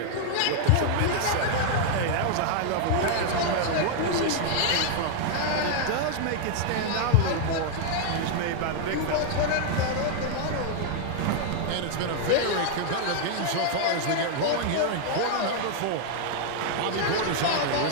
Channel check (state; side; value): different; both; correlation 0.00